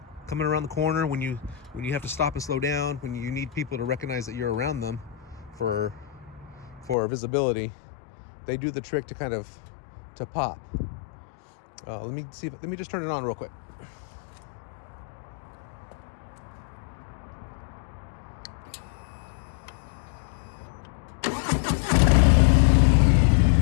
coming around the corner, when you have to stop and slow down, when you need people to recognize that you're around them for visibility, they do the trick to kind of pop. Let me just turn it on real quick.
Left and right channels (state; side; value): drops out; right; at 7.0 s